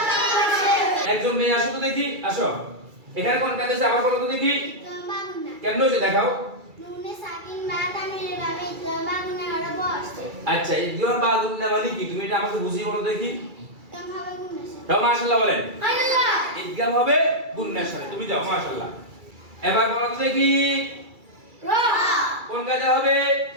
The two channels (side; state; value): left; late; 2.3 ms